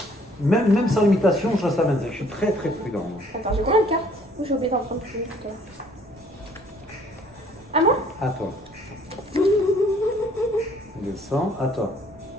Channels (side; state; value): both; normal; correlation 0.59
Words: même sans limitation, ça m'intéresse. Je suis très très prudent. Attends, j'ai combien de cartes? Ou j'ai oublié d'en prendre plus? À moi? À toi. Descends, à toi.